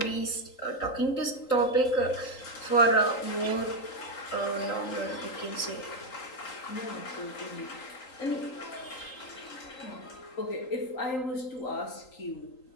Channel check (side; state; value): right; late; 3.8 ms